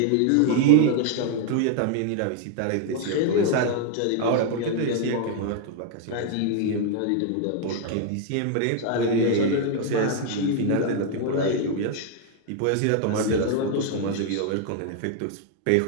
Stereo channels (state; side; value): different; both; correlation 0.00